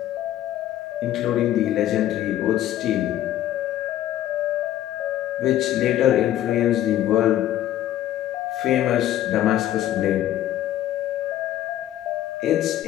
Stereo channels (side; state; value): right; quieter; 12.8 dB